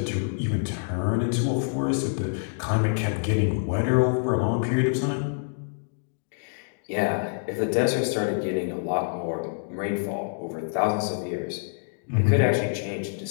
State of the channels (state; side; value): silent; right; digital silence